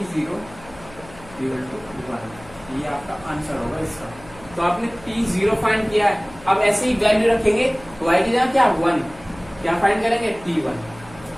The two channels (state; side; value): noise; left; hum, 20 dB below the sound